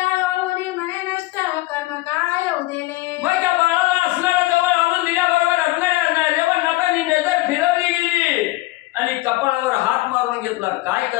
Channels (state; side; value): quieter; right; 19.4 dB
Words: म्हणे नष्ट कर्म काय उदेले. मग त्या बाळाला असणारा जवळ आणून दिल्याबरोबर असणाऱ्या रेवणनाथांनी नजर फिरवली गेली आणि कपाळावर हात मारून घेतला. काय